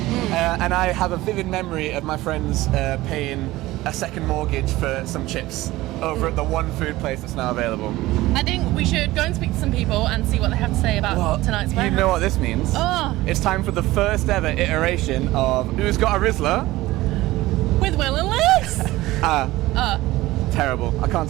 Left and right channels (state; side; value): quieter; left; 17.9 dB